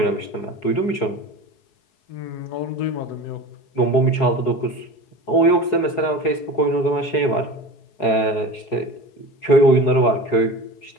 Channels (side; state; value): right; late; 4.7 ms